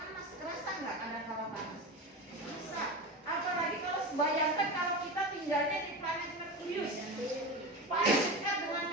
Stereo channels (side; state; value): both; normal; correlation 0.24